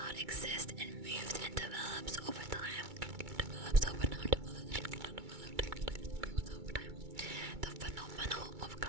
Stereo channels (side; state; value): left; late; 2.3 ms